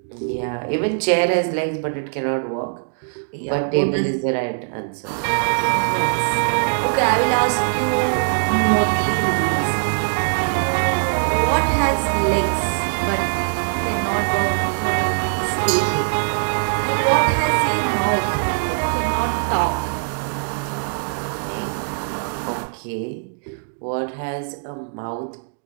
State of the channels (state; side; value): silent; left; digital silence